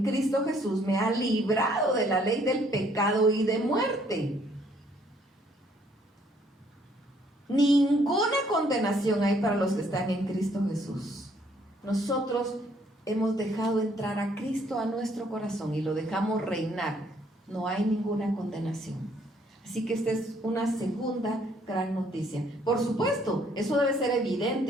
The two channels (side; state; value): both; normal; correlation 0.65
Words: Cristo Jesús me ha librado de la ley del pecado y de muerte. Ninguna condenación hay para los que están en Cristo Jesús. Nosotros hemos dejado entrar a Cristo a nuestro corazón y lo dejamos reinar. No hay ninguna condenación. Así que esta es una segunda gran noticia. Por supuesto, eso debe ser